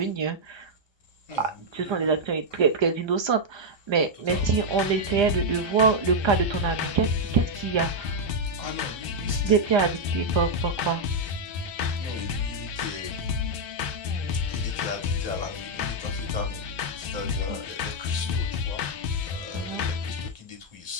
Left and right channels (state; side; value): late; left; 1.3 ms